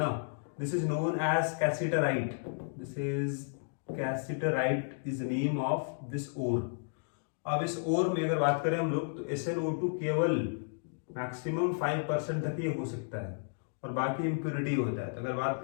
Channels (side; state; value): right; silent; digital silence